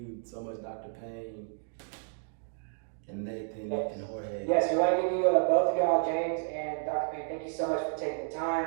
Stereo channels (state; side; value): silent; left; digital silence